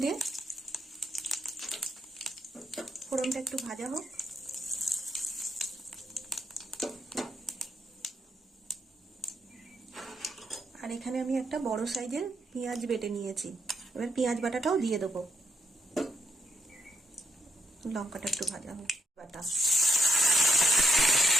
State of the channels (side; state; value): both; normal; correlation 0.77